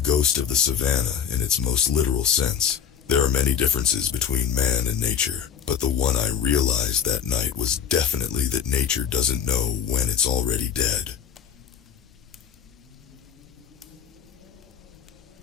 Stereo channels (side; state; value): right; quieter; 8.1 dB